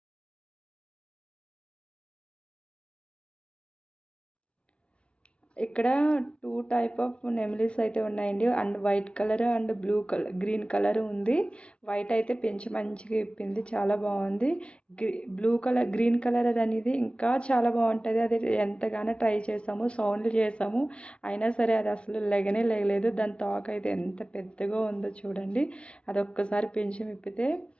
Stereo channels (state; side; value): late; right; 0.059 ms